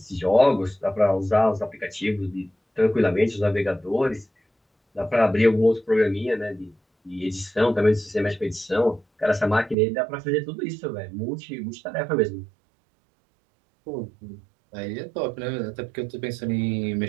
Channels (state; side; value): drops out; left; at 9.8 s